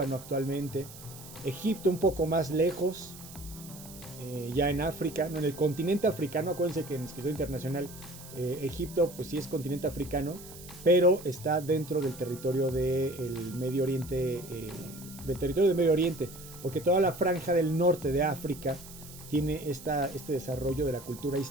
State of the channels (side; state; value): right; noise; hiss, 16 dB below the sound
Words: actualmente, Egipto un poco más lejos, ya en África, no, en el continente africano. Acuérdense que en Escritura Internacional Egipto pues sí es continente africano, pero está dentro del territorio del Medio Oriente, porque toda la franja del norte de África tiene este desarrollo de la cultura